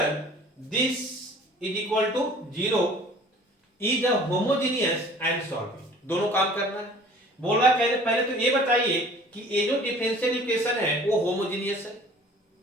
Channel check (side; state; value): both; normal; correlation 0.49